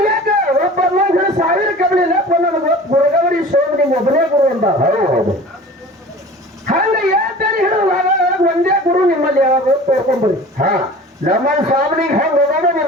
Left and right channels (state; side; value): normal; both; correlation 0.41